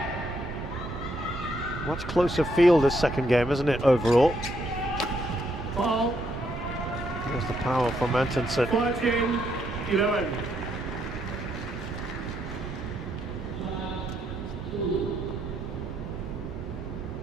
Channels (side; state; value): both; normal; correlation 0.75